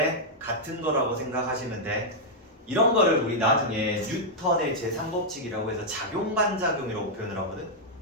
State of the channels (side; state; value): both; normal; correlation -0.05